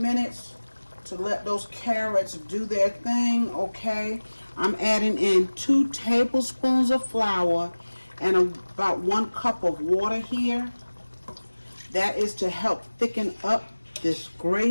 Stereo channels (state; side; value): inverted; both; correlation -1.00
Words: to let those carrots do their thing. Okay, I'm adding in 2 tablespoons of flour and about 1 cup of water here. That is to help thicken up this